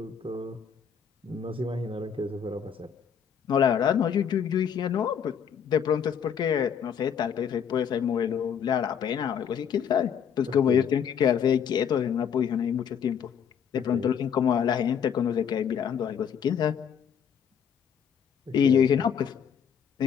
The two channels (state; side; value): quieter; right; 7.8 dB